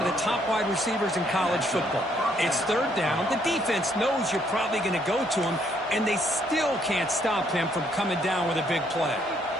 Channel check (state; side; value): normal; both; correlation 0.69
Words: of the top wide receivers in college football. It's third down. The defense knows you're probably going to go to him, and they still can't stop him from coming down with a big play.